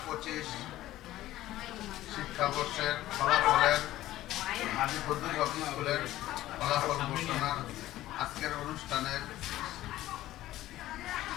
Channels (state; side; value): quieter; right; 15.0 dB